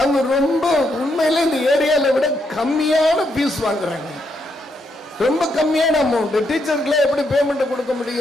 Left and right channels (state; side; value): normal; both; correlation 0.78